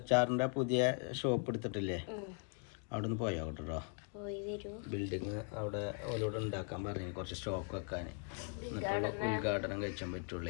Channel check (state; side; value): quieter; right; 38.0 dB